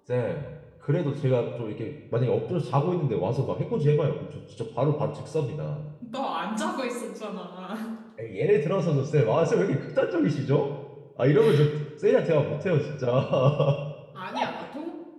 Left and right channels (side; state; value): both; identical; correlation 1.00